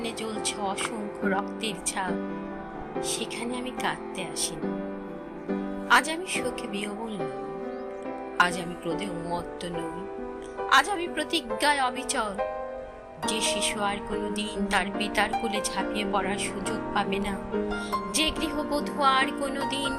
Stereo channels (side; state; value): both; identical; correlation 1.00